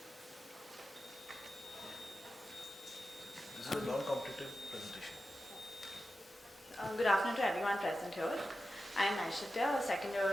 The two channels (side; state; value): both; normal; correlation 0.91